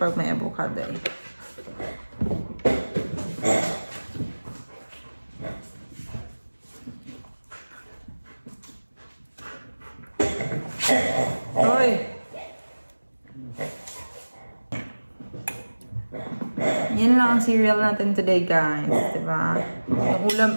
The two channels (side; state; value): both; inverted; correlation -1.00